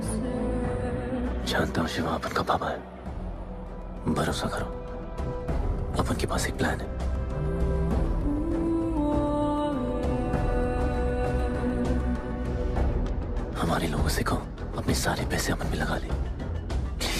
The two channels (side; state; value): both; identical; correlation 1.00